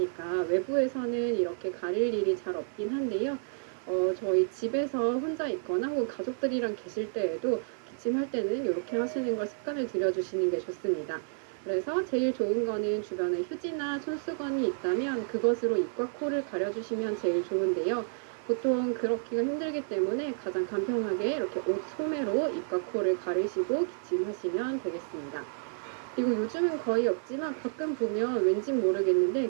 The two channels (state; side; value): silent; left; 56 dB below the other